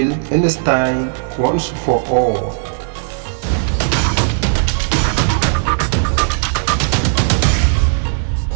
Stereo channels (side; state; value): left; silent; 63 dB below the other